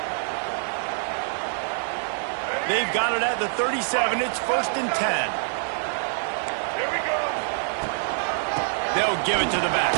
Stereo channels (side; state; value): left; silent; digital silence